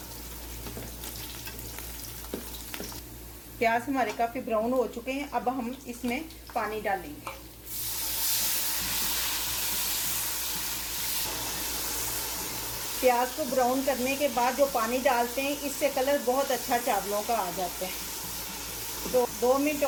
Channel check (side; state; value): both; identical; correlation 1.00